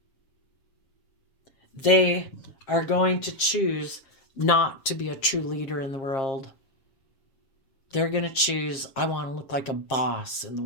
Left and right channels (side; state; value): right; late; 7.5 ms